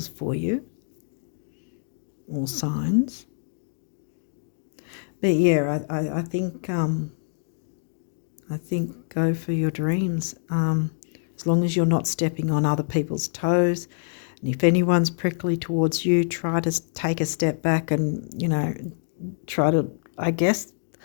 for you, or signs. But yeah, I think go for your dreams. As long as you're not stepping on other people's toes, and if anyone's prickly towards you, try to take a step back and, you know, try to, I guess,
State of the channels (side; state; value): right; silent; digital silence